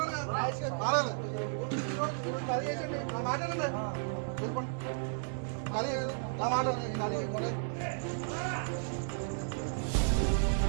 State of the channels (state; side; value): silent; left; digital silence